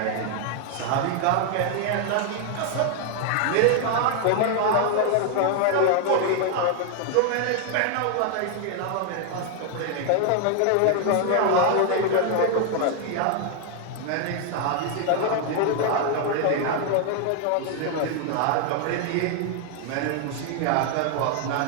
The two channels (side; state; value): both; different; correlation 0.00